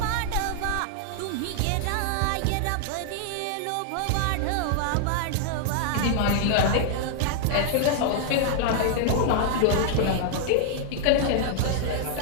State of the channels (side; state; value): both; different; correlation -0.01